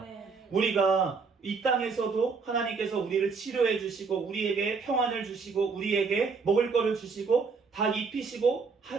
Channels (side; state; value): left; quieter; 4.9 dB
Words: 우리가 이 땅에서도 하나님께서 우리를 치료해 주시고 우리에게 평안을 주시고 우리에게 먹을 거를 주시고 다 입히시고